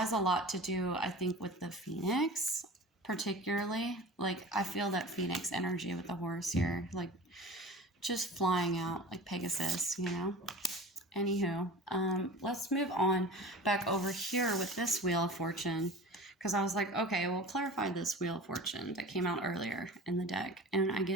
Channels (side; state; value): both; normal; correlation 0.37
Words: a lot to do, I think, with the Phoenix, particularly. Like, I feel that Phoenix energy with the horse here, like just flying out like Pegasus, you know? Anywho, let's move on back over here with this Wheel of Fortune, because I was like, okay, we'll clarify this Wheel of Fortune that came out earlier in the deck. And I